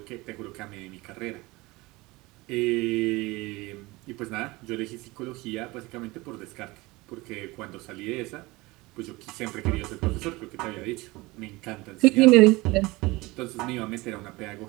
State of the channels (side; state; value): left; quieter; 22.1 dB